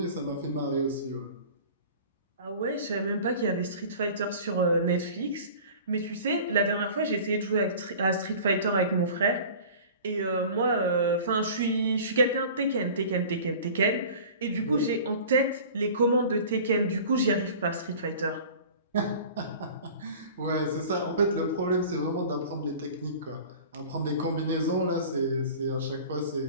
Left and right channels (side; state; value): both; inverted; correlation -0.42